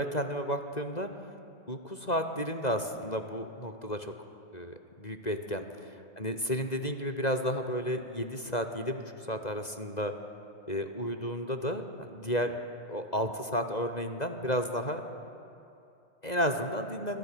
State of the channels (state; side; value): late; right; 2.0 ms